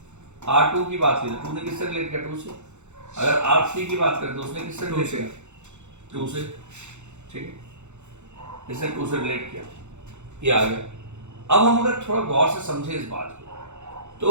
R2 की बात की तो 2 ने किससे रिलेट किया 2 से, अगर R3 की बात करें तो उसने किससे रिलेट किया 2 से, ठीक है, इसने 2 से रिलेट किया, ये आ गया। अब हम अगर थोड़ा गौर से समझे इस बात को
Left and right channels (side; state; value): left; late; 0.83 ms